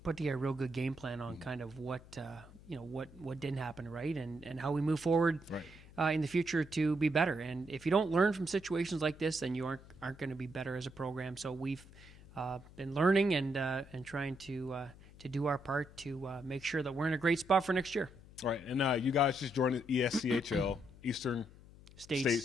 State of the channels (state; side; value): noise; left; hum, 20 dB below the sound